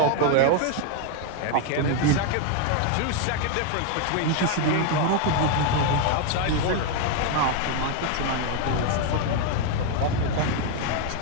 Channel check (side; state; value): both; different; correlation 0.01